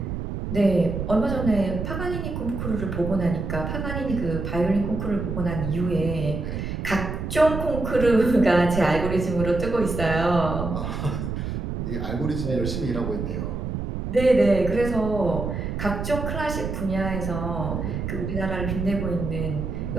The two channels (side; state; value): right; noise; rumble, 4 dB below the sound